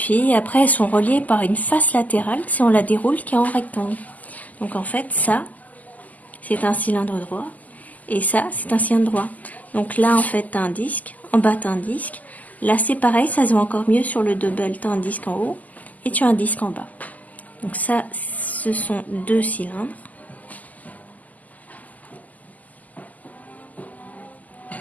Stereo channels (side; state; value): right; late; 0.079 ms